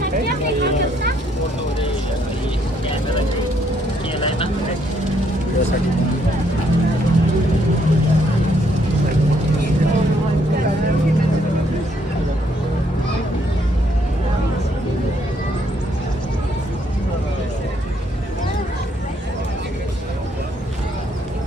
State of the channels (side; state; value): both; normal; correlation 0.70